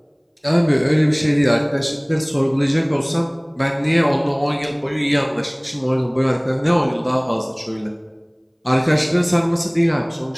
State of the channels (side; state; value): both; identical; correlation 1.00